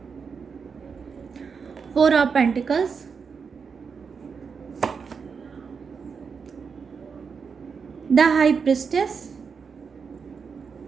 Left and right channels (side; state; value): left; quieter; 5.7 dB